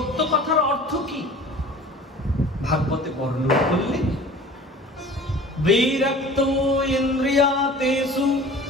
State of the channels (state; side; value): normal; both; correlation 0.43